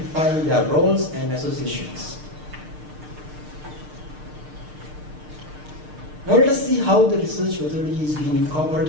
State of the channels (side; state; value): left; late; 6.6 ms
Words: their roles and associations. Now let us see how the research methodology is being